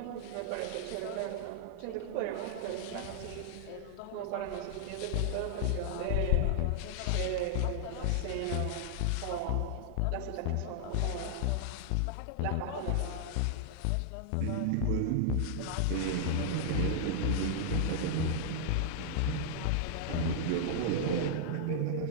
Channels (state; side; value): different; both; correlation -0.01